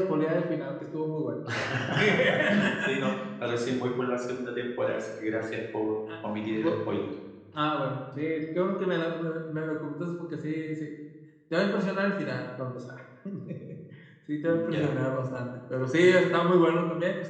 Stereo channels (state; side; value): identical; both; correlation 1.00